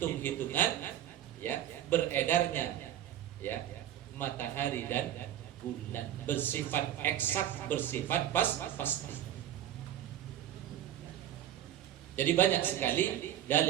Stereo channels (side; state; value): left; quieter; 11.3 dB